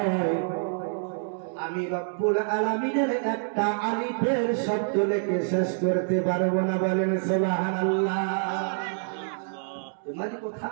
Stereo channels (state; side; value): silent; left; digital silence